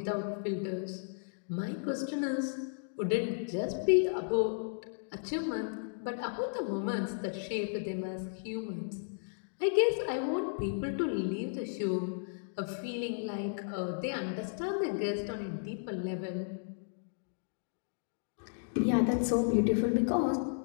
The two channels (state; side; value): silent; right; digital silence